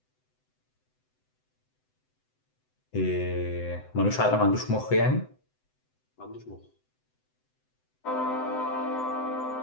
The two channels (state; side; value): late; right; 7.9 ms